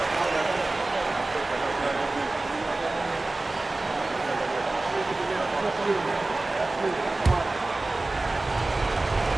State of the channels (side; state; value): left; quieter; 3.0 dB